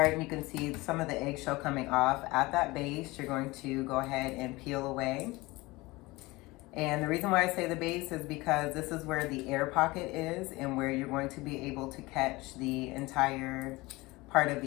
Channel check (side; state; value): right; quieter; 21.7 dB